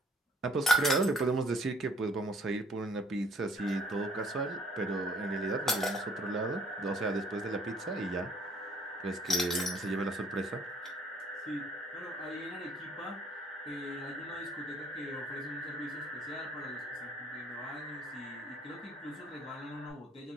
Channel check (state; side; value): normal; both; correlation 0.59